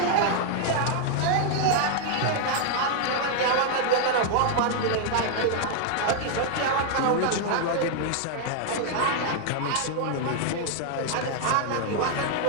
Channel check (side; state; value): both; different; correlation 0.00